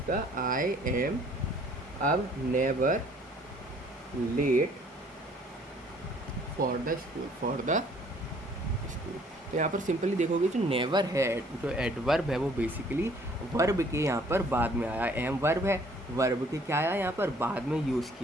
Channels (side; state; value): both; normal; correlation 0.58